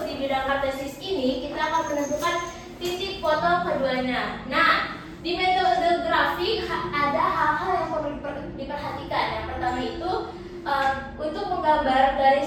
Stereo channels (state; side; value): identical; both; correlation 1.00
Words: di bidang kartesius ini, kita akan menentukan titik potong keduanya. Nah, di metode grafik ada hal-hal yang perlu diperhatikan. Yang pertama itu untuk menggambar